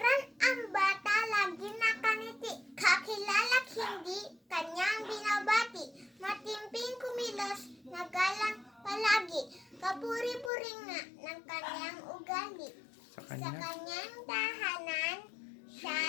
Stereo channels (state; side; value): drops out; right; at 10.5 s